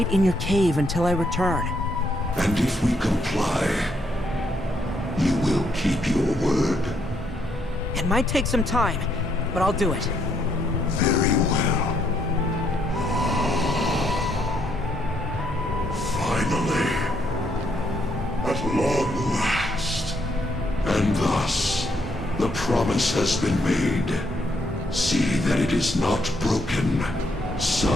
in your cave until I return. And if we comply, you will keep your word? It might take some time, but I'll do it. Very well. Finally. At long last. And thus, the promise has been made. See that it is not broken,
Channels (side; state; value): both; normal; correlation 0.73